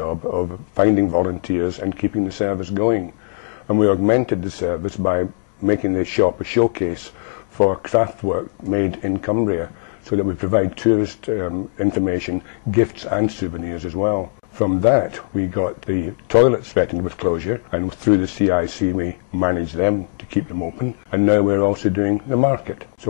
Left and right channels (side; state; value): right; silent; digital silence